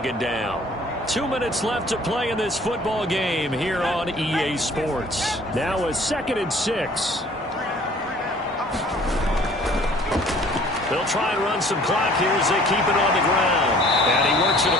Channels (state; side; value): normal; both; correlation 0.53